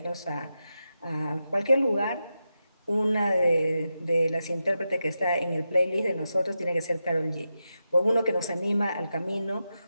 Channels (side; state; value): both; inverted; correlation -0.89